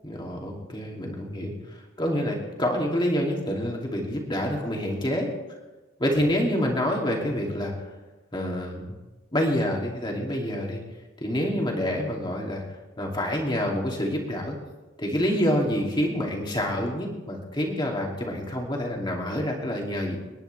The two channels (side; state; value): both; normal; correlation 0.66